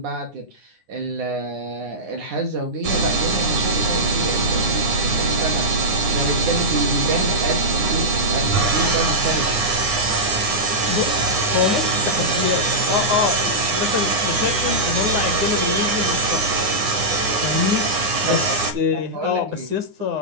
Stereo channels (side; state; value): left; late; 9.7 ms